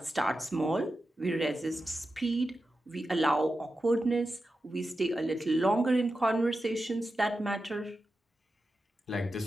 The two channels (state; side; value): normal; both; correlation 0.91